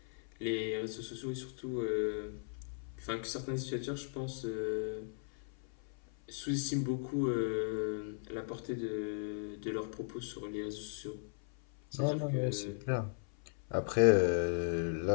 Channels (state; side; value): silent; right; 53 dB below the other